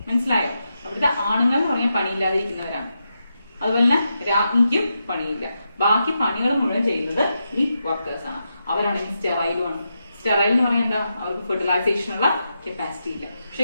മനസ്സിലായോ? അവിടുത്തെ ആണുങ്ങൾ എന്ന് പറഞ്ഞാൽ പണിയില്ലാതിരിക്കുന്നവരാണ്. അതുപോലെ തന്നെ രാജ്ഞിക്കും പണിയില്ല. ബാക്കി പണികൾ മുഴുവൻ ചെയ്യുന്നത് ഈ വർക്കേഴ്സ് ആണ്. അവരാണെങ്കിൽ സ്റ്റെറൈലുമാണ്. സ്റ്റെറൈൽ എന്ന് പറഞ്ഞാൽ എന്താ? അവർക്ക് ഫെർട്ടിലൈസേഷനുള്ള കപ്പാസിറ്റി ഇല്ല.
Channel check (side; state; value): both; inverted; correlation -0.86